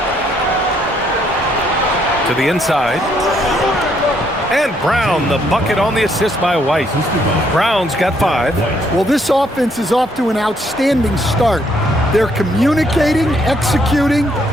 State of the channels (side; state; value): both; normal; correlation 0.70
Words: To the inside. And Brown, the bucket on the assist by White. Brown's got 5. Well, this offense is off to an outstanding start. They're communicating, executing,